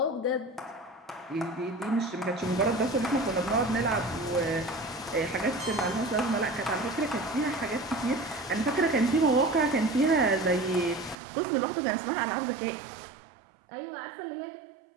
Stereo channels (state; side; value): drops out; left; at 11.2 s